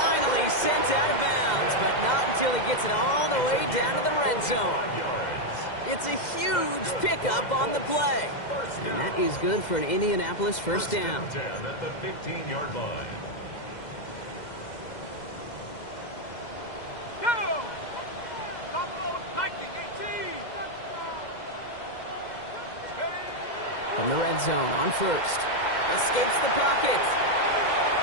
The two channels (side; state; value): right; late; 2.0 ms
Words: sent out of bounds, but not until he gets it all the way down to the red zone. It's a huge pickup on the play. And that is good for an Indianapolis first down. First and 10 at the 15-yard line. Go! Viking 18. From the red zone on first. Escapes the pocket.